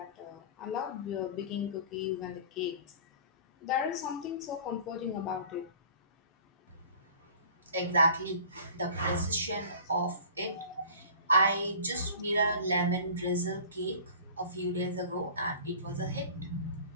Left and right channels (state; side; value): inverted; both; correlation -0.43